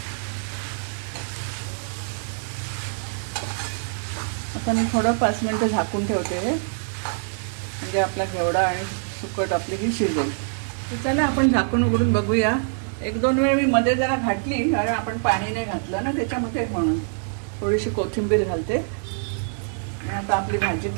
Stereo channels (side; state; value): left; silent; digital silence